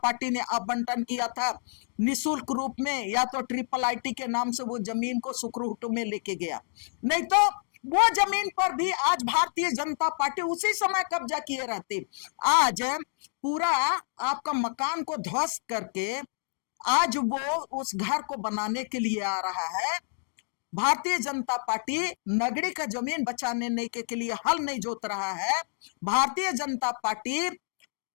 ने आवंटन किया था निःशुल्क रूप में, या तो IIIT के नाम से वो जमीन को सुखरूप में लेके गया, नहीं तो वो जमीन पर भी आज भारतीय जनता पार्टी उसी समय कब्जा किए रहती। आज पूरा आपका मकान को ध्वस्त करके आज वो उस घर को बनाने के लिए आ रहा है। भारतीय जनता पार्टी नगरी का जमीन बचाने के लिए हल नहीं जोत रहा है। भारतीय जनता पार्टी,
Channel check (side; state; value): right; silent; digital silence